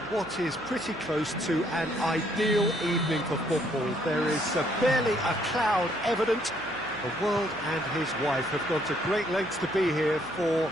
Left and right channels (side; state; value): right; noise; hum, 24 dB below the sound